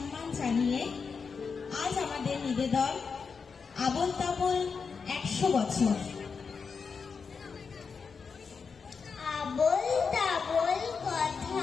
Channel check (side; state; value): right; quieter; 5.5 dB